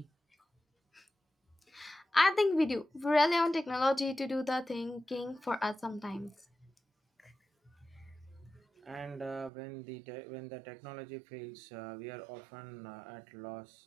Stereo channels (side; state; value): left; drops out; at 9.5 s